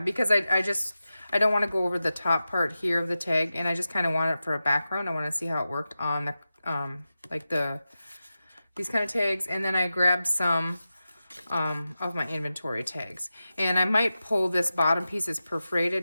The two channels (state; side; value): inverted; both; correlation -0.93